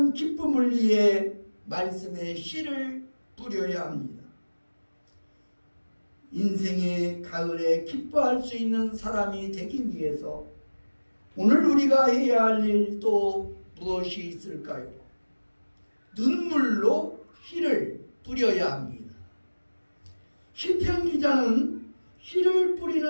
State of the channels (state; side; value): inverted; both; correlation -1.00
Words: 기쁨을 위해 말씀의 씨를 뿌려야 합니다. 인생의 가을에 기뻐할 수 있는 사람이 되기 위해서 오늘 우리가 해야 할 일 또 무엇이 있을까요? 눈물로 씨를 뿌려야 합니다. 시편 기자는 씨를